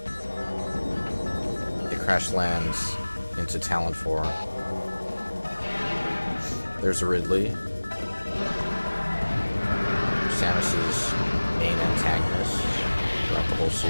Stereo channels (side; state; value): both; inverted; correlation -1.00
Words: It crash lands into Tallon IV. There's Ridley, Samus's main antagonist throughout the whole